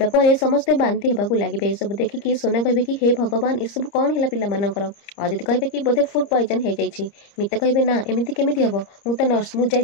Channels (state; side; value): late; right; 30 ms